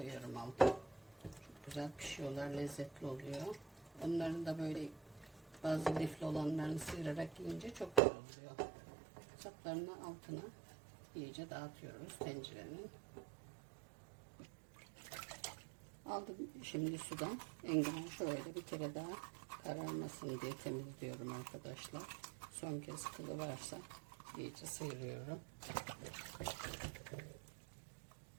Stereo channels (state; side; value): drops out; left; at 8.0 s